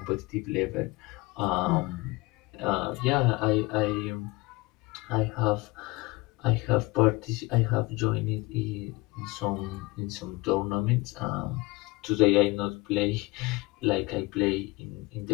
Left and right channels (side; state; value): right; quieter; 23.0 dB